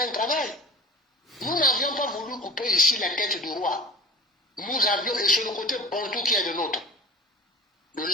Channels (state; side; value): normal; both; correlation 0.38